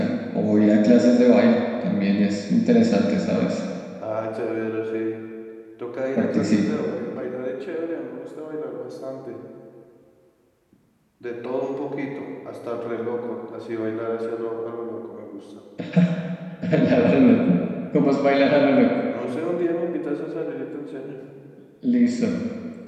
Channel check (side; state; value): both; identical; correlation 1.00